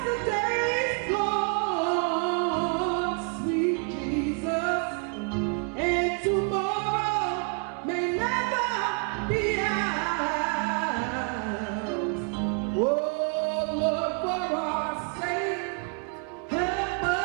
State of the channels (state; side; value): quieter; left; 39.4 dB